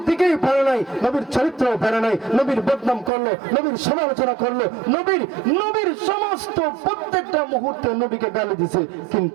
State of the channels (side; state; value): left; drops out; at 3.1 s